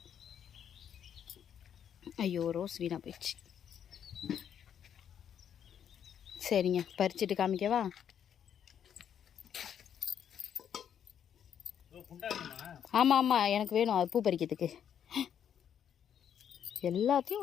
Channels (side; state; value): right; quieter; 8.9 dB